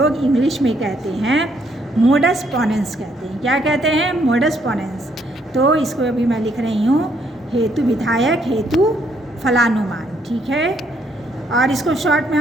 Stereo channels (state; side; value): normal; both; correlation 0.71